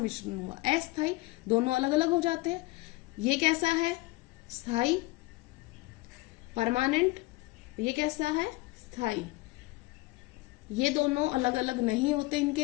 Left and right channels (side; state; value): right; quieter; 21.0 dB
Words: हुआ? अस्थाई, दोनों अलग अलग हो जाते हैं। ये कैसा है? स्थाई, परमानेंट। ये कैसा है? स्थाई। ये दोनों अलग अलग नहीं होते,